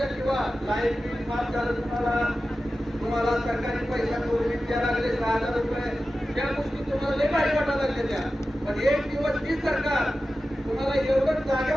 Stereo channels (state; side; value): normal; both; correlation 0.94